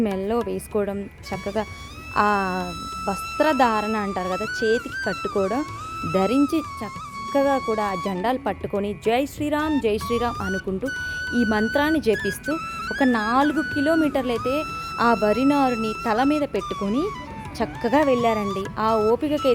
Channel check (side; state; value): both; identical; correlation 1.00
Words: మెల్లో వేసుకోవడం, చక్కగా ఆ వస్త్రధారణ అంటారు కదా, చేతికి కట్టుకోవడం ధరించి చక్కగా కూడా ఆ జెండాలు పట్టుకొని జై శ్రీరామ్ జై శ్రీరామ్ అనుకుంటూ ఈ మంత్రాన్ని జపిస్తూ ఒక 4 కిలోమీటర్లు అయితే ఆ వరినారుని తల మీద పెట్టుకొని చక్కగా వెళ్ళారండి. ఆ